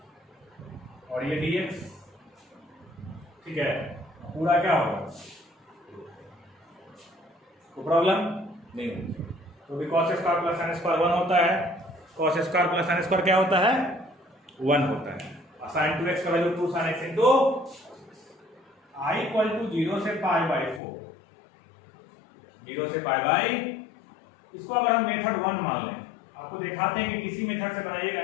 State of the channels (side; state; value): right; drops out; at 20.8 s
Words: और ये dx, ठीक है। पूरा क्या होगा, कोई प्रॉब्लम नहीं होगी। तो भी cos square plus sine square 1 होता है, cos square plus sine square क्या होता है, 1 होता है। साइन 2x का value 2 sine x into I equal to 0 से पाई बाई 4, 0 से पाई बाई, इसको अगर हम मेथड 1 मान लें, आपको दिखाते हैं कि किसी मेथड से बनाइएगा